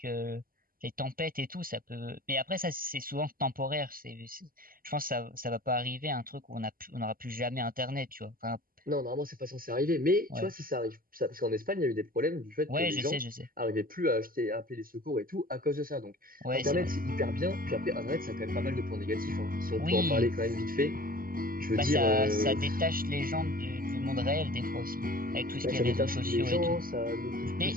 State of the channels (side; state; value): left; late; 0.42 ms